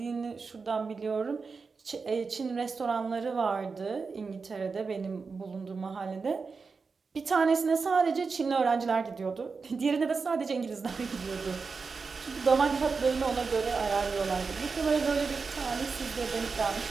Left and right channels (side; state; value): left; quieter; 4.8 dB